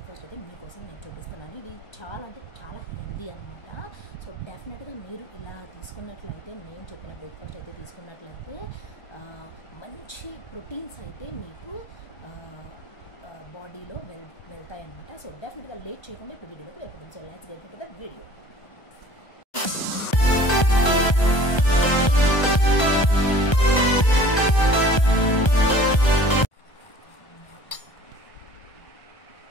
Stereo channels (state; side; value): late; right; 1.3 ms